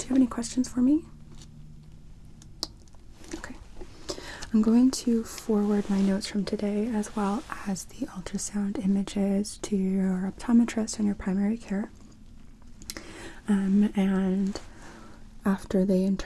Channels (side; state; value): both; identical; correlation 1.00